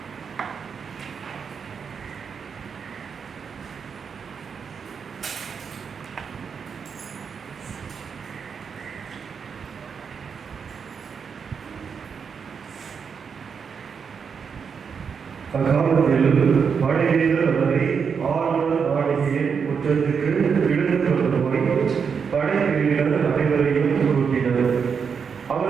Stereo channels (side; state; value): left; quieter; 6.3 dB